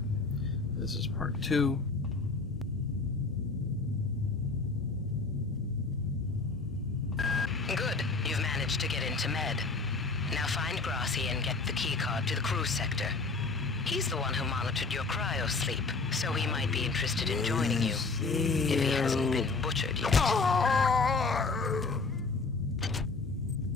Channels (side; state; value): right; quieter; 4.0 dB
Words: This is part 2. Good. You've managed to get into Med. Now find Grassi and get the keycard to the cruise sector. He's the one who monitored your cryo-sleep, so he might be interested in joining you. If he hasn't been butchered yet.